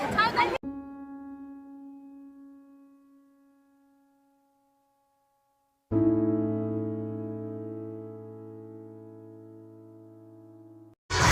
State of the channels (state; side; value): identical; both; correlation 1.00